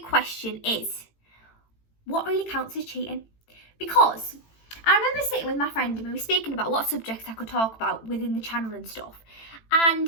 question is, what really counts as cheating? Because I remember sitting with my friend and we were speaking about what subjects I could talk about within the channel and stuff.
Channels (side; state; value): right; late; 18 ms